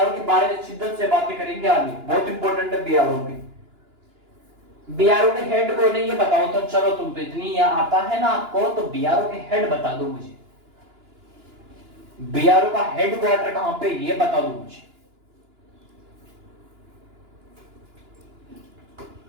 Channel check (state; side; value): late; left; 2.9 ms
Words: के बारे में शिद्दत से बातें करेंगे आगे, बहुत इंपॉर्टेंट है BRO में। BRO के हेड कौन है ये बताओ तो। चलो, तुम तो इतनी आता है ना आपको, तो BRO के हेड बता दो मुझे। BRO का हेडक्वार्टर कहां पे, ये बता दो मुझे।